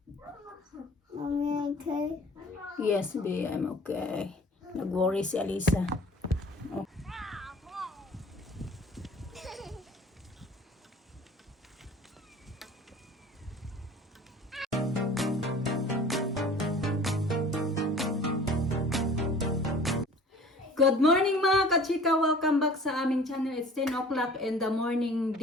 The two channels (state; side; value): normal; both; correlation 0.47